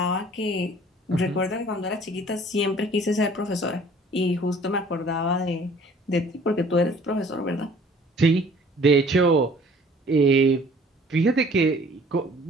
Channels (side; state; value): both; normal; correlation 0.53